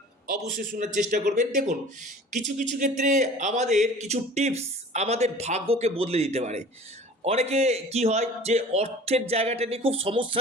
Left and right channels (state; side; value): normal; both; correlation 0.44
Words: অবশ্যই শোনার চেষ্টা করবেন। দেখুন, কিছু কিছু ক্ষেত্রে আমাদের কিছু টিপস আমাদের ভাগ্যকে বদলে দিতে পারে। অনেকে কি হয় যে অর্থের জায়গাটা নিয়ে খুব